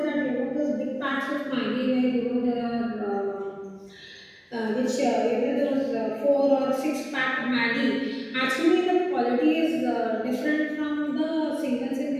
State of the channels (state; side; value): identical; both; correlation 1.00